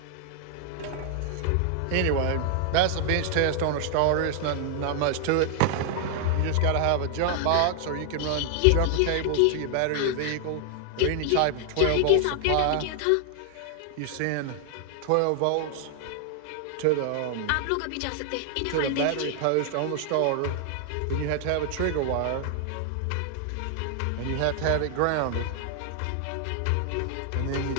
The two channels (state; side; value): different; both; correlation 0.00